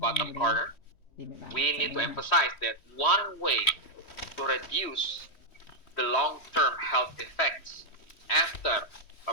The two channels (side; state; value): right; late; 3.1 ms